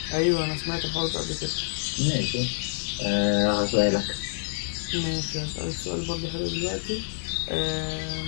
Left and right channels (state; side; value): silent; right; digital silence